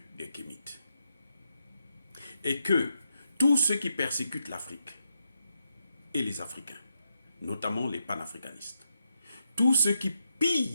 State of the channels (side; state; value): both; inverted; correlation -0.83